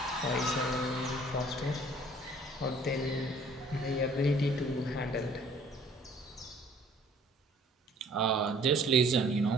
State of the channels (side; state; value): both; normal; correlation 0.55